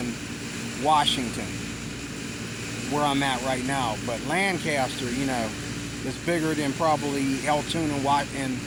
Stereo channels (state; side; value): identical; both; correlation 1.00